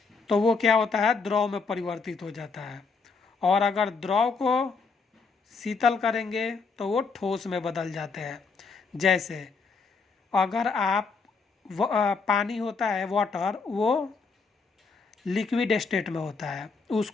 तो वो क्या होता है? द्रव में परिवर्तित हो जाता है। और अगर द्रव को शीतल करेंगे तो वो ठोस में बदल जाते हैं। जैसे अगर आप पानी होता है वाटर, वो लिक्विड स्टेट में होता है,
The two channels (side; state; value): right; quieter; 4.7 dB